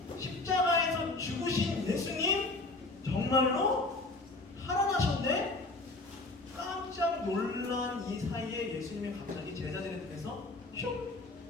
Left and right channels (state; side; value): quieter; right; 3.1 dB